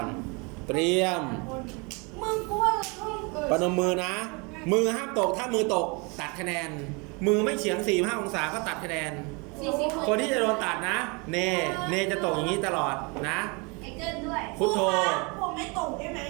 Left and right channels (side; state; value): left; quieter; 30.0 dB